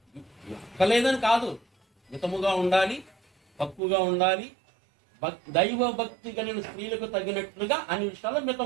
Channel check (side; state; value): left; drops out; at 3.8 s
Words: లేదని కాదు. మితముగా ఉండాలి, తక్కువగా ఉండాలి, దైవ భక్తి కలిగిన స్త్రీలకు తగినట్లుగా అన్ని విషయాల్లో